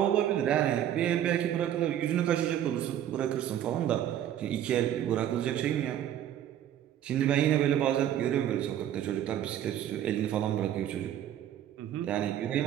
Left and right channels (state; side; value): quieter; left; 11.0 dB